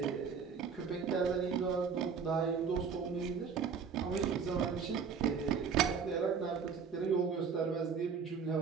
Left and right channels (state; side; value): quieter; left; 6.1 dB